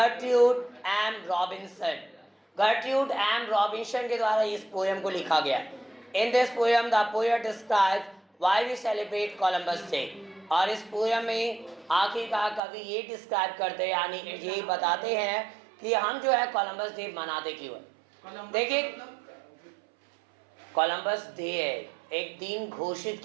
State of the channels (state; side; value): drops out; left; at 12.6 s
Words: M Robinson. Gertrude M Robinson के द्वारा इस पोएम को लिखा गया। In this poem the poet describes why we celebrate Columbus Day. और इस पोएम में आखिरकार कवि ये डिस्क्राइब करते हैं, यानी ये बताते हैं कि हम जो है कोलंबस डे मनाते क्यों है। देखिए, कोलंबस डे है, एक दिन घोषित